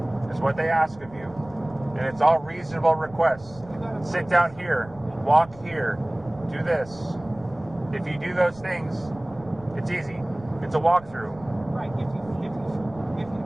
is what they ask of you. And it's all reasonable requests. Sit down here, walk here, do this. If you do those things, it's easy. It's a walkthrough. Right. If you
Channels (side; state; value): right; noise; rumble, 21 dB below the sound